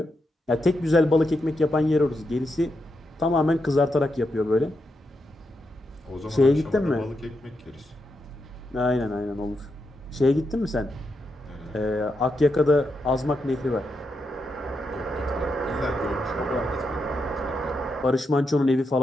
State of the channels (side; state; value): both; normal; correlation 0.84